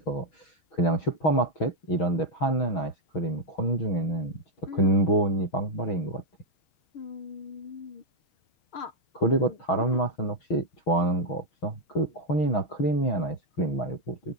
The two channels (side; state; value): right; late; 6.3 ms